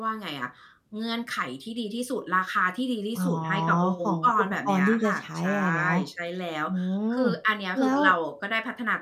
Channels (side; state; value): both; identical; correlation 1.00